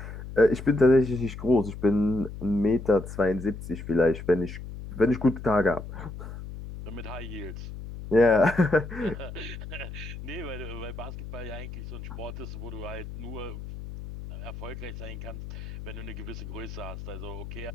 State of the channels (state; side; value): noise; left; hum, 10 dB below the sound